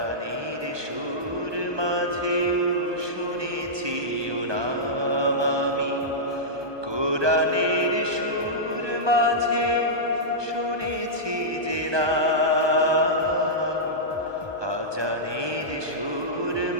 সুর মাঝেও শুনেছি ও নাম। আমি কোরআনের সুর মাঝে শুনেছি যে না, আজানের সুর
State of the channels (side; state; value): left; late; 1.2 ms